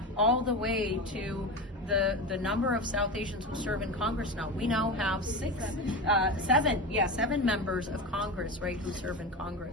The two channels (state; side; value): normal; both; correlation 0.23